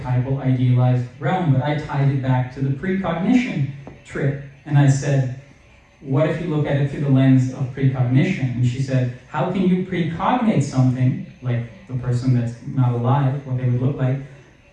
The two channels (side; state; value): both; identical; correlation 1.00